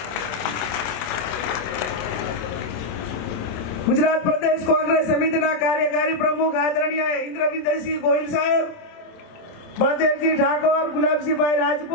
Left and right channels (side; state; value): right; late; 27 ms